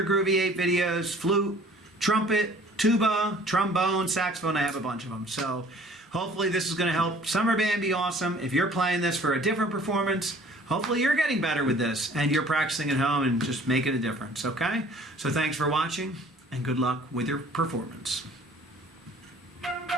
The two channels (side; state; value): both; normal; correlation 0.52